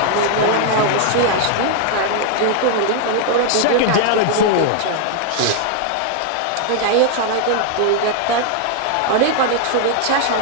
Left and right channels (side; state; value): both; different; correlation 0.00